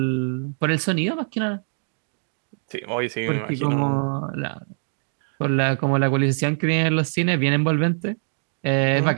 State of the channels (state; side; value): silent; left; digital silence